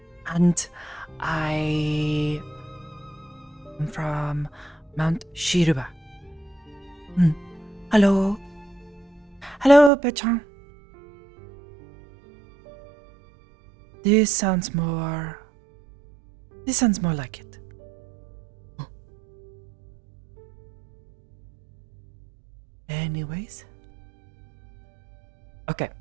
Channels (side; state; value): left; drops out; at 9.9 s